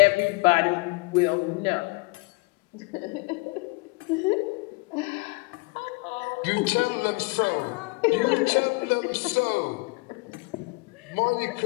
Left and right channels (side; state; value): right; quieter; 27.2 dB